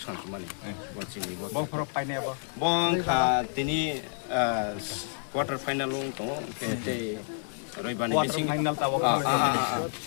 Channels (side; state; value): right; silent; 58 dB below the other